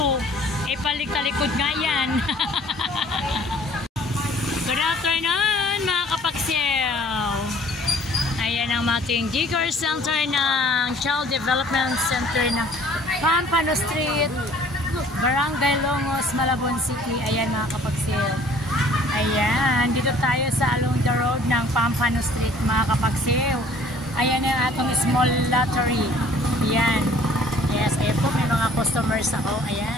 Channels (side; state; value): both; normal; correlation 0.54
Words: Eh, paliktalikod nga yan. Good afternoon mga kapagsew. Ayan ang ating Daycare Center ng Child Development Center ng Pampano Street, Barangay Longos, Malabon City. Ayan mga kapagsew. Ayan, dito tayo sa along the road ng Pampano Street mga kapagsew. Ayan ang atong small lottery. Ayan. Yes, ayan po, may mga customers ako.